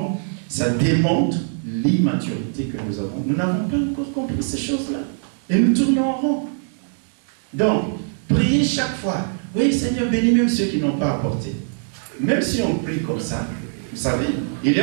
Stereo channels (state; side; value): silent; left; digital silence